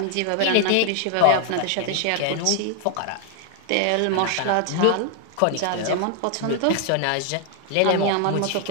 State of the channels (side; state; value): both; different; correlation 0.00